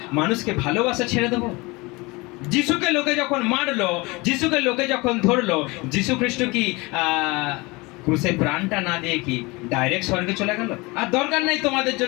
মানুষকে ভালোবাসা ছেড়ে দেবো? যিশুকে লোকে যখন মারলো, যিশুকে লোকে যখন ধরলো, যিশু খ্রিস্ট কি ক্রুশে প্রাণটা না দিয়ে কি ডাইরেক্ট স্বর্গে চলে গেল? আর দরকার নাই তোমাদের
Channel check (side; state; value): right; quieter; 24.5 dB